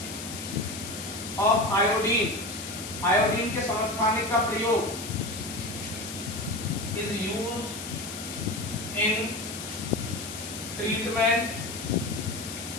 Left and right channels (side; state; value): left; noise; hiss, 9 dB below the sound